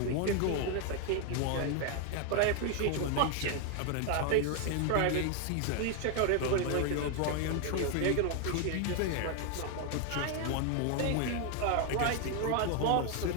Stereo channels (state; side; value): different; both; correlation 0.00